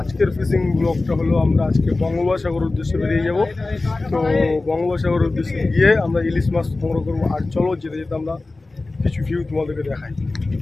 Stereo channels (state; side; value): quieter; right; 3.3 dB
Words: ফিশিং ব্লগটা হলো আমরা আজকে বঙ্গোপসাগর উদ্দেশ্যে বেরিয়ে যাব। তো বঙ্গোপসাগর উদ্দেশ্যে গিয়ে আমরা ইলিশ মাছ সংগ্রহ করবো। আর চলো যেতে যেতে আমরা কিছু ভিউ তোমাদেরকে দেখাই।